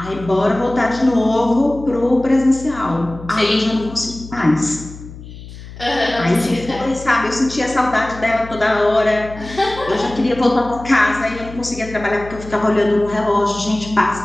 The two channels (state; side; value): noise; left; hum, 15 dB below the sound